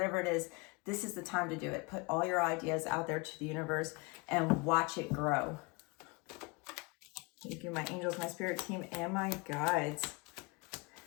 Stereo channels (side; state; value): right; quieter; 27.9 dB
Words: it is, this is the time to do it. Put all your ideas out there to the universe and watch it grow. Thank you, my angels, my spirit team, and my guides.